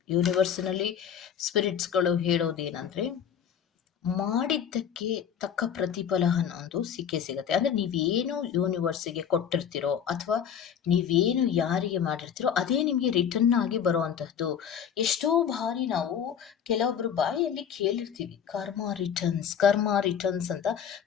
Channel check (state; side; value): quieter; right; 8.3 dB